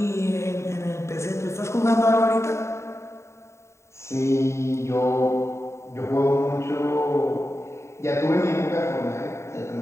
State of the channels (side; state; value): right; late; 0.14 ms